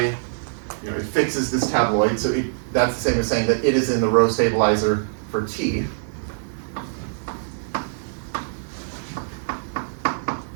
you know, it fixes this tabloid, so that's the same as saying that it is in the row stabilizer for t.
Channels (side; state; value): left; silent; 63 dB below the other